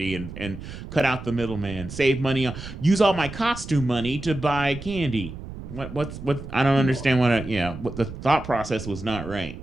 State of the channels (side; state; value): right; noise; rumble, 11 dB below the sound